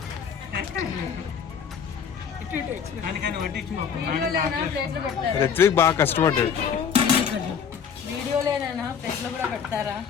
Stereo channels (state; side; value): quieter; right; 7.1 dB